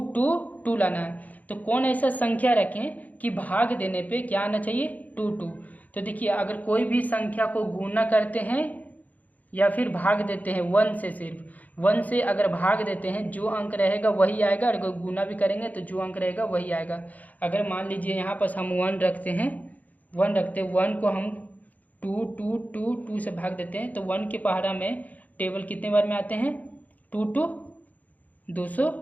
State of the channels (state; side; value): late; right; 0.077 ms